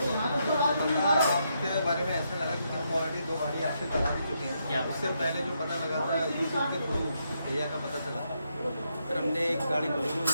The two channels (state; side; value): inverted; both; correlation -0.79